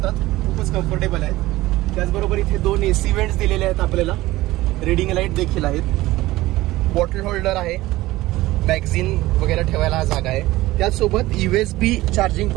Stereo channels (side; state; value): left; quieter; 17.8 dB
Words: खूपच कम्फर्टेबल आहेत। त्याचबरोबर इथे 2 AC वेंट्स दिलेले आहेत आपल्याला, रीडिंग लाईट देखील आहेत, बॉटल होल्डर आहे, मॅगझिन वगैरे ठेवायला हा जागा आहे। त्याचसोबत USB चार्जिंग